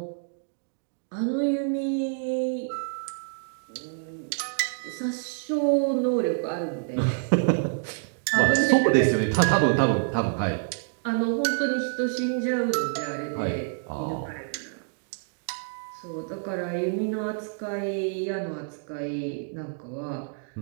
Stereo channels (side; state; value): left; silent; digital silence